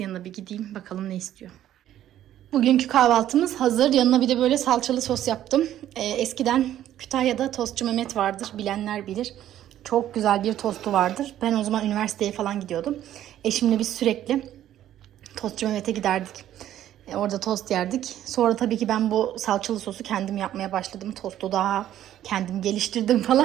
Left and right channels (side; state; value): left; quieter; 12.0 dB